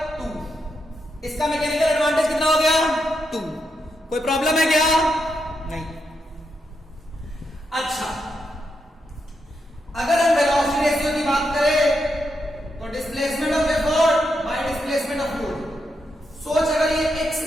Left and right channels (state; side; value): normal; both; correlation 0.83